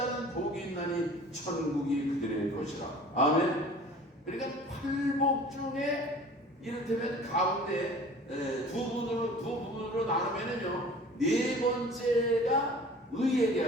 복이 있나니 천국이 그들의 것이라. 아멘. 그러니까 팔복 중에 이를테면 가운데 두 부분으로 나누면은요, 네 번째가 의에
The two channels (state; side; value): normal; both; correlation 0.45